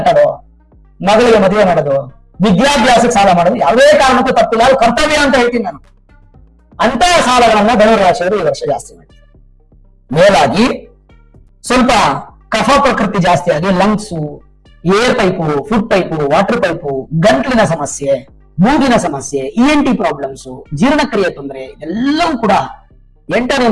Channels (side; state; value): both; identical; correlation 1.00